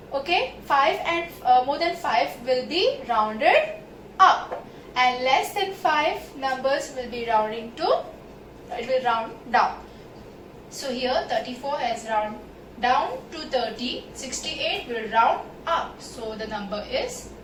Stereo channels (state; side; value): identical; both; correlation 1.00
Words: okay, 5 and more than 5 will be rounded up, and less than 5 numbers will be rounding to, it will round down. So here 34 has round down to 30, 68 will round up, so the number is